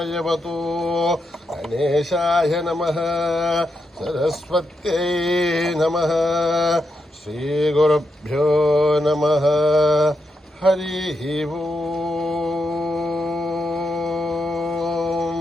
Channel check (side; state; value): both; normal; correlation 0.84